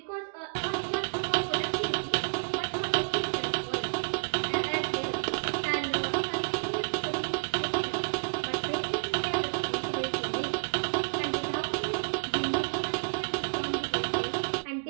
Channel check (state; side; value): silent; left; digital silence